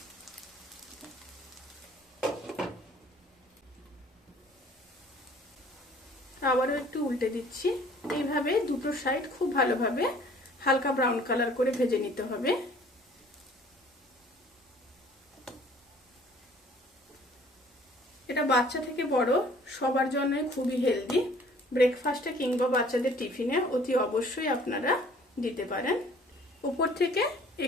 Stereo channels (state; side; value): normal; both; correlation 0.54